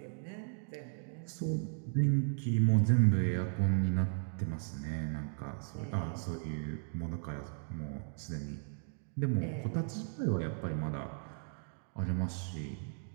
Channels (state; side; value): silent; left; 54 dB below the other